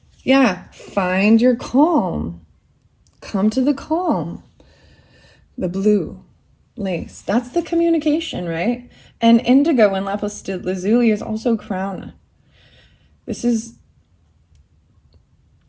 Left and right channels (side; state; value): both; identical; correlation 1.00